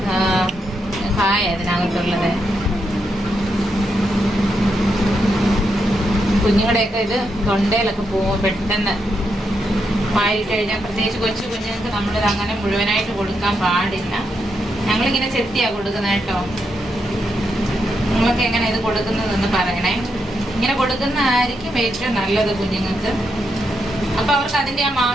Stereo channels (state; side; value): normal; both; correlation 0.82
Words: കായ അതിനകത്തുള്ളത്. കുഞ്ഞുങ്ങളുടെയൊക്കെ ഇത് തൊണ്ടയിലൊക്കെ പോകും പെട്ടെന്ന്. വായിട്ട് കഴിഞ്ഞാൽ പ്രത്യേകിച്ച് കൊച്ചു കുഞ്ഞുങ്ങൾക്ക് നമ്മളിത് അങ്ങനെ മുഴുവനായിട്ട് കൊടുക്കാൻ പാടില്ല. ഞങ്ങളിങ്ങനെ ചെത്തിയാണ് കൊടുക്കുന്നത് കേട്ടോ. നിങ്ങൾക്ക് എങ്ങനെ ഇത് കൊടുക്കുന്നതെന്ന് പറയണേ. ഇങ്ങനെ കൊടുക്കുന്നതായിരിക്കും ഏറ്റവും നല്ലത് കുഞ്ഞുങ്ങൾക്ക്. അപ്പം അവർക്ക് അതിൻ്റെ ആ